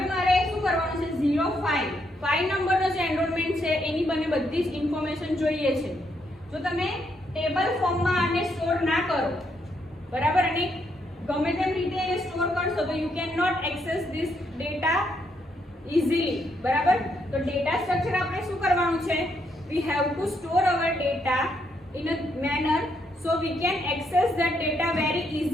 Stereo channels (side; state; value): both; normal; correlation 0.76